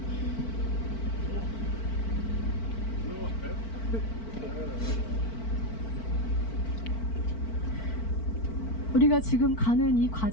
우리가 지금 가는 이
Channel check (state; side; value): late; right; 4.5 ms